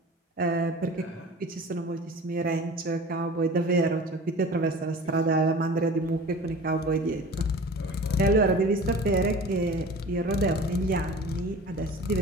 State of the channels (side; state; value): both; normal; correlation 0.40